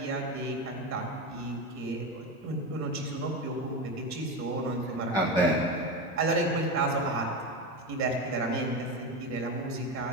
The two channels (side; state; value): both; normal; correlation 0.18